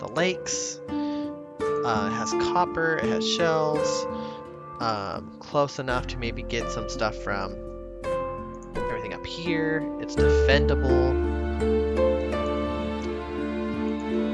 lakes. It has copper, it has shells. Close enough to maybe get some stuff from everything up here. It's defendable.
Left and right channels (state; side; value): identical; both; correlation 1.00